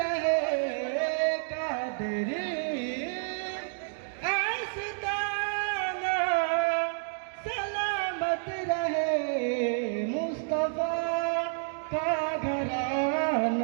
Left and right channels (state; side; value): silent; left; digital silence